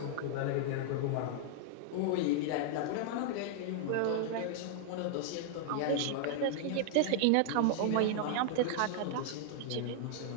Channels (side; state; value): both; different; correlation -0.01